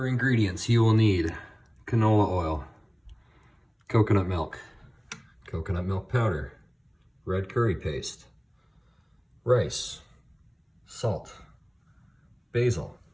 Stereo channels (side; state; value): both; identical; correlation 1.00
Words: ingredients, you will need canola oil, coconut milk powder, red curry paste, rice, salt, basil,